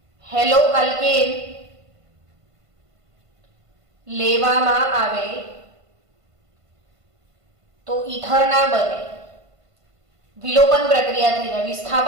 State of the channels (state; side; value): late; left; 1.5 ms